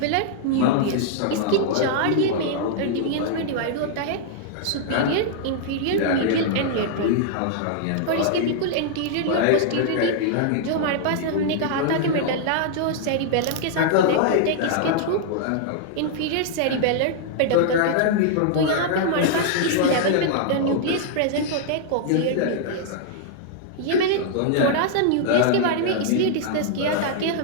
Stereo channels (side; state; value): both; different; correlation -0.01